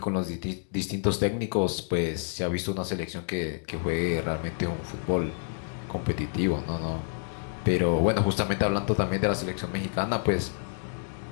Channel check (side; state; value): right; silent; digital silence